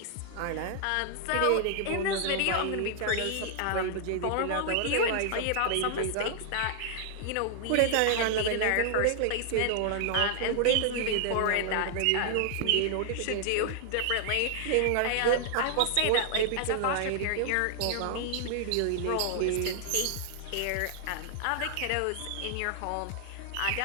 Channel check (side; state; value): both; different; correlation 0.00